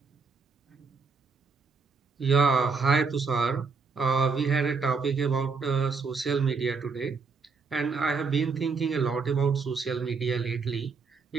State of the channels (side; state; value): left; quieter; 4.9 dB